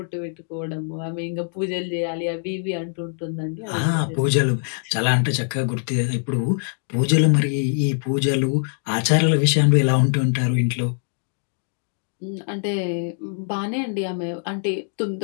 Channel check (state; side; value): silent; right; digital silence